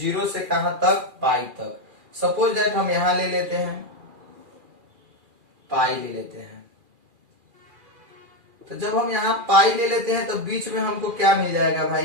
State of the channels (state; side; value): late; left; 2.4 ms